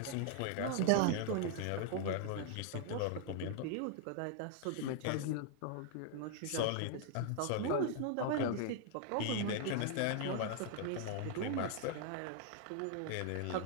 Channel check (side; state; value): both; different; correlation 0.00